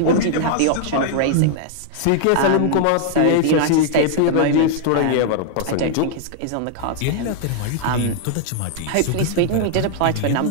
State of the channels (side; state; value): both; different; correlation -0.01